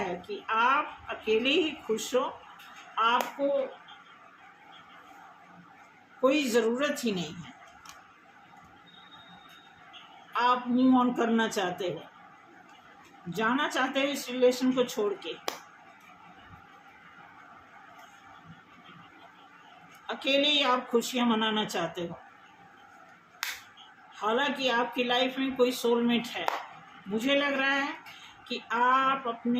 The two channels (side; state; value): both; identical; correlation 1.00